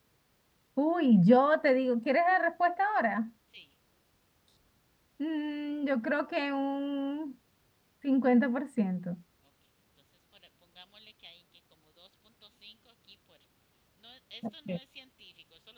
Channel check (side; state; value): both; identical; correlation 1.00